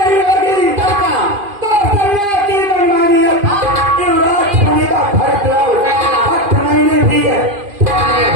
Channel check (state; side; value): late; left; 2.5 ms